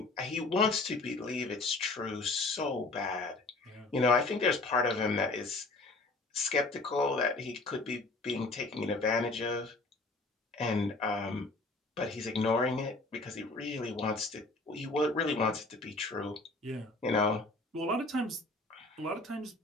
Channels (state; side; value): quieter; right; 3.2 dB